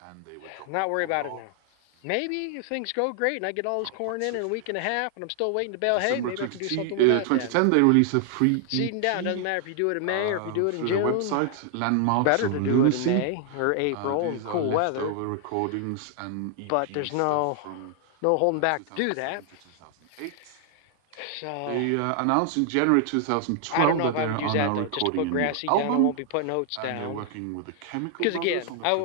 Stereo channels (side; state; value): both; different; correlation 0.00